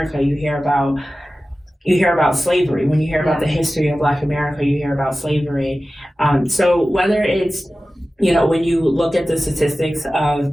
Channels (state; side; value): normal; both; correlation 0.95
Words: you hear about slavery. When you hear about the history of Black America, you hear about slavery. So whether it's when you look at the statistics